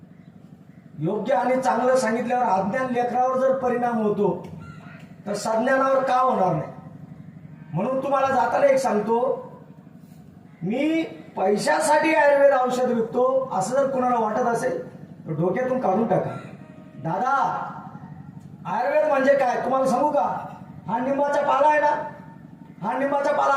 योग्य आणि चांगलं सांगितल्यावर अज्ञान लेकरावर जर परिणाम होतो तर सज्ञानावर का होणार नाही. म्हणून तुम्हाला जाताना एक सांगतो, मी पैशासाठी आयुर्वेद औषध विकतो असं जर कुणाला वाटत असेल तर डोक्यातून काढून टाका. दादा, आयुर्वेद म्हणजे काय तुम्हाला सांगू का? हा निंबाचा पाला आहे ना, हा निंबाचा पाला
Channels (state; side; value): identical; both; correlation 1.00